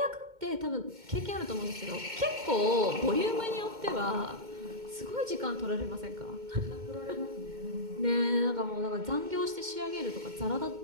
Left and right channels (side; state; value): left; late; 2.2 ms